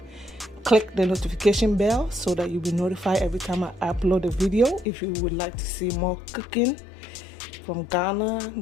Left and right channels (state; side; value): drops out; right; at 4.9 s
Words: click the notification bell so that you'll be notified every time I upload a video. If you would like to see more cooking from